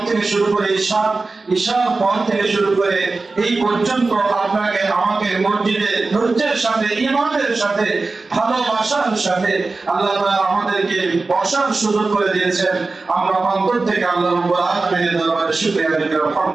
থেকে শুরু করে ঈশার পর থেকে শুরু করে এই পর্যন্ত আপনাকে আমাকে মসজিদে ধৈর্যের সাথে, ঈমানের সাথে, ভালোবাসার সাথে আল্লাহ তাআলা আমাদেরকে বসার সুযোগ করে দিয়েছেন। আমরা অন্তর থেকে আল্লাহ রাব্বুল আলামিনের দরবারে শুকরিয়া আদায় করি।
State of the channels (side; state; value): left; quieter; 3.7 dB